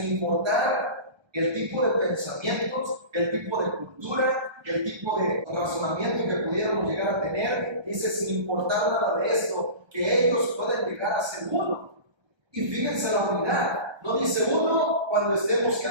importar el tipo de pensamientos, el tipo de cultura, el tipo de razonamiento que pudiéramos llegar a tener, dice: sin importar nada de esto, que ellos puedan llegar a ser uno. Y fíjense la unidad, no dice uno cuando estemos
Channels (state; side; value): late; left; 1.3 ms